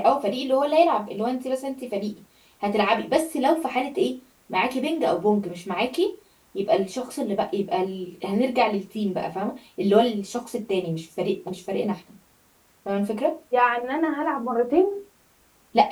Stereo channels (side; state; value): both; identical; correlation 1.00